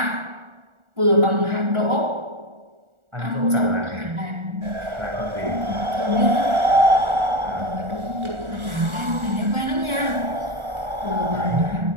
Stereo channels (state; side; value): late; left; 1.4 ms